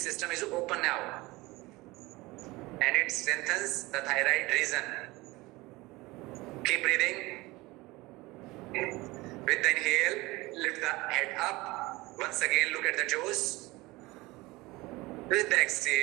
is open now. And it strengthens the thyroid region. Keep breathing. With the inhale, lift the head up. Once again, look at the toes. With the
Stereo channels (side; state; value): left; quieter; 21.4 dB